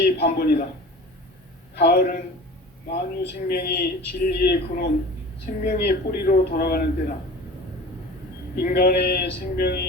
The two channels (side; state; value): both; normal; correlation 0.38